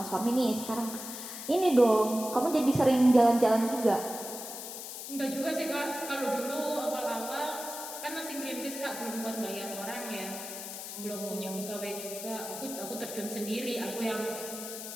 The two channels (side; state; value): left; noise; hiss, 9 dB below the sound